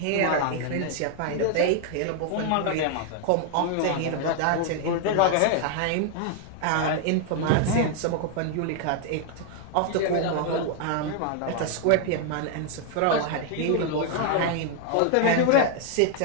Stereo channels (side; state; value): both; different; correlation 0.00